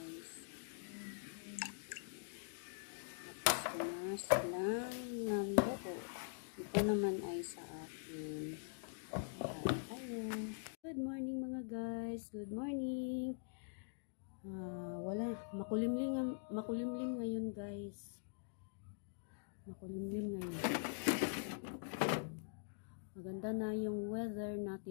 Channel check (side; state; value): right; silent; digital silence